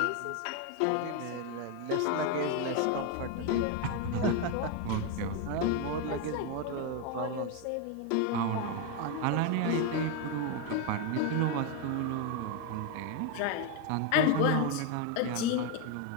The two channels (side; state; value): both; different; correlation 0.02